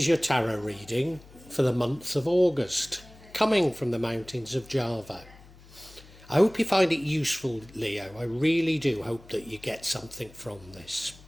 your tarot reading for the month of August, coming from the mountains of Java. I hope you find it useful, Leo. I really do hope that you get something from this.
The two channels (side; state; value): left; noise; hum, 22 dB below the sound